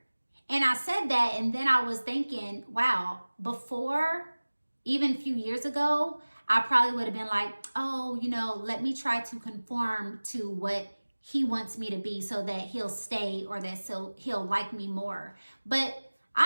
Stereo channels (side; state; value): both; inverted; correlation -1.00